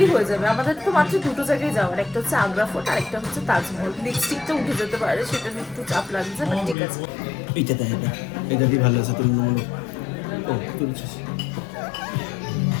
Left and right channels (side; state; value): right; drops out; at 6.8 s